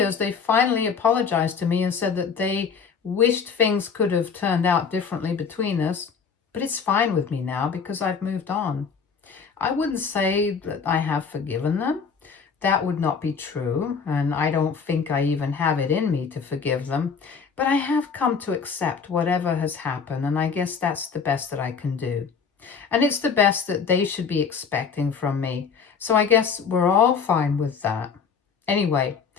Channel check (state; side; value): quieter; right; 6.0 dB